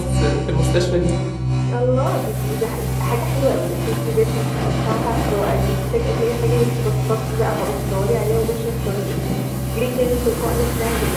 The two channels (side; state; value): both; identical; correlation 1.00